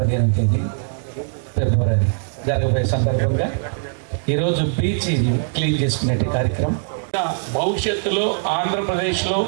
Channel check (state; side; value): silent; left; 62 dB below the other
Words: తేదీ ఫిబ్రవరి జరగబోయే సందర్భంగా ఈరోజు బీచ్ క్లీన్ చేసుకునే కార్యక్రమం. భవిష్యత్తులో ఆంధ్రప్రదేశ్లో